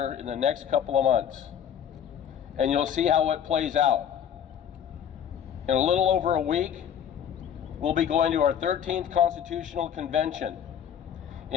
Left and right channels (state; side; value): quieter; right; 8.9 dB